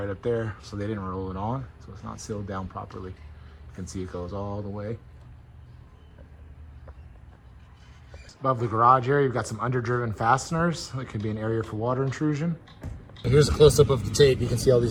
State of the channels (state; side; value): identical; both; correlation 1.00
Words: up there. So they didn't roll it on, so it's not sealed down properly. You can see it goes all the way. Above the garage area, you've got some underdriven fasteners. That could be an area for water intrusion. Here's a close-up of the tape. You can see all